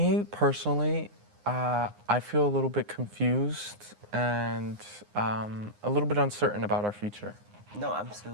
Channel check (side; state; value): left; late; 9.7 ms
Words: personally, I feel a little bit confused and a little bit uncertain about our future. No,